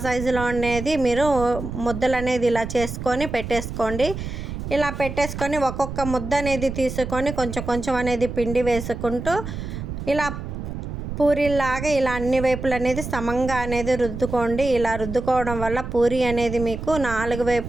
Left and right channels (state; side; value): noise; right; rumble, 7 dB below the sound